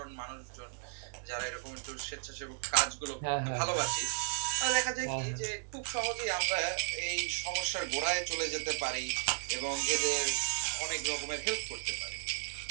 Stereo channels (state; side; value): silent; left; 55 dB below the other